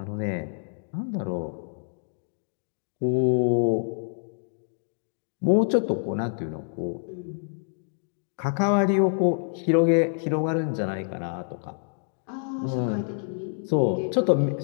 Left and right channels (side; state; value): right; silent; digital silence